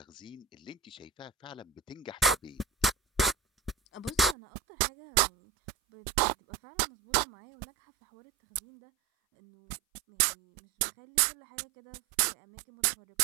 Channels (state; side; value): drops out; left; at 4.4 s